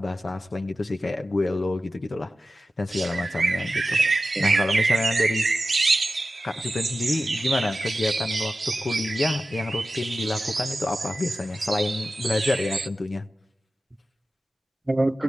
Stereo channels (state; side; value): normal; both; correlation 0.94